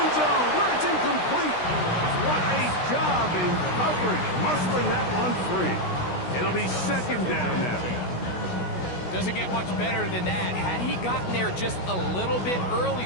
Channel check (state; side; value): late; right; 16 ms